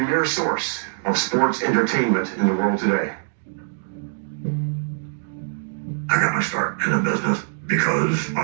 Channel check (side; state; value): left; silent; digital silence